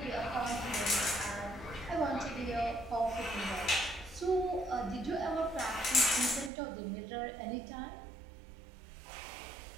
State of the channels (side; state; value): left; drops out; at 6.5 s